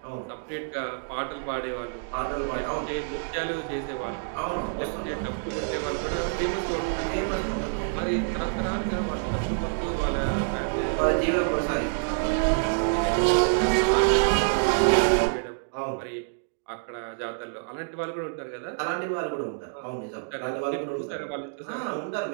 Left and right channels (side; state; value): left; silent; digital silence